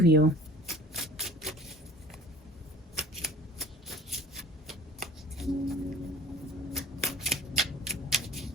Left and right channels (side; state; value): both; normal; correlation 0.45